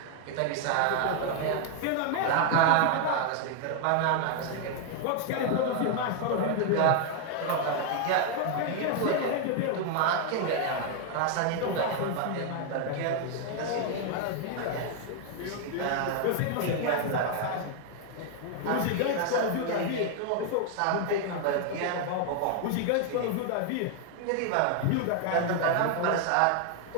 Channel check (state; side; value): different; both; correlation 0.00